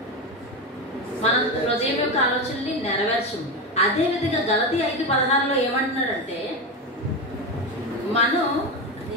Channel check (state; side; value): normal; both; correlation 0.17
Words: మన హృదయం యొక్క ఆలోచనని నెరవేర్చము. అదే విధంగా గలతీ 5:16 ఏమంటున్నాడంటే మనం